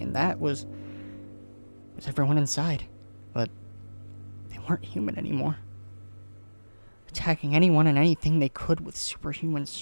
that was everyone inside. But they weren't human anymore. Attacking anyone and anything they could with superhuman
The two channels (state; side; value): inverted; both; correlation -1.00